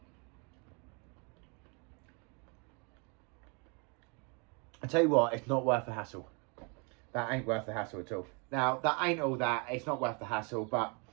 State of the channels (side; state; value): left; quieter; 33.4 dB